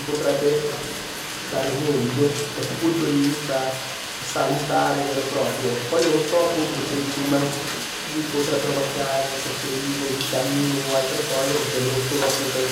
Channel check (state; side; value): identical; both; correlation 1.00